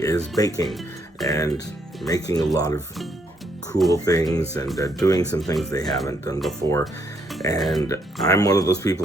baking and making a lot of cool things and doing some things they haven't done before. And I'm one of those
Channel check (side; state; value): both; normal; correlation 0.73